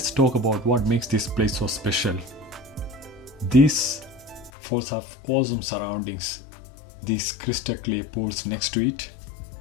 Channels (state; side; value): drops out; right; at 4.5 s